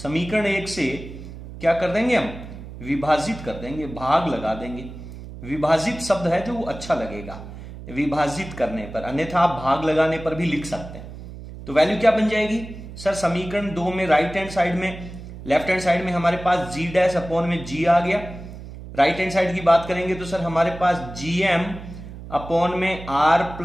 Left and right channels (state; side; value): noise; right; hum, 13 dB below the sound